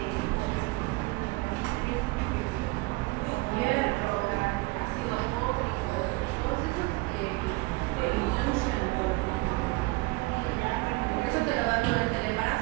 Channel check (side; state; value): left; quieter; 24.4 dB